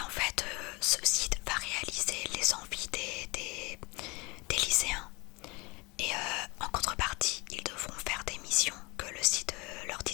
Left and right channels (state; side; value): quieter; right; 26.3 dB